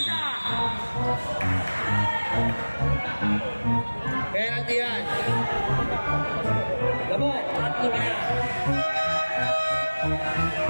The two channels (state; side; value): inverted; both; correlation -1.00